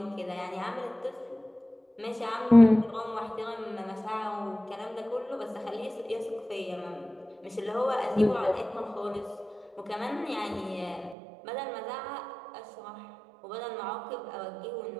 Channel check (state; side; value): drops out; left; at 11.2 s